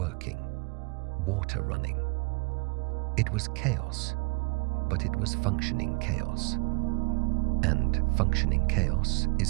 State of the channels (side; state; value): left; quieter; 30.4 dB